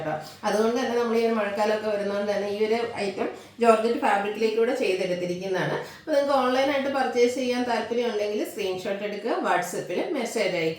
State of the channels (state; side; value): identical; both; correlation 1.00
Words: അതുകൊണ്ട് തന്നെ നമ്മൾ ഈ ഒരു മഴക്കാലമൊക്കെ വരുന്നതുകൊണ്ട് തന്നെ ഈ ഒരു ഐറ്റം ജോർജറ്റ് ഫാബ്രിക്കിലേക്കൂടെ ചെയ്തെടുത്തിരിക്കുന്നതാണ്. അപ്പോൾ നിങ്ങൾക്ക് ഓൺലൈനായിട്ട് പർച്ചേസ് ചെയ്യാൻ താല്പര്യം ഉണ്ടെങ്കിൽ സ്ക്രീൻഷോട്ട് എടുക്കുക, വാട്സപ്പിൽ മെസ്സേജ്